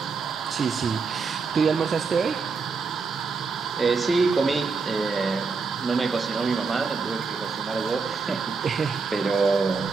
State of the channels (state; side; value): quieter; left; 4.8 dB